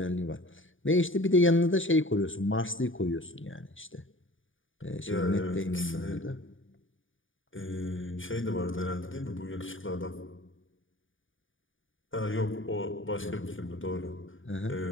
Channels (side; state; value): right; late; 0.57 ms